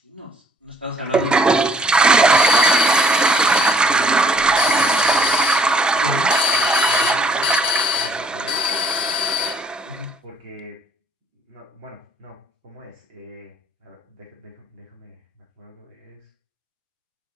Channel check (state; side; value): normal; both; correlation 0.60